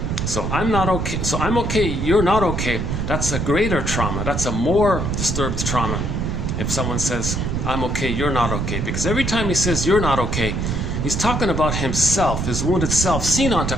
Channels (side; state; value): right; noise; rumble, 1 dB below the sound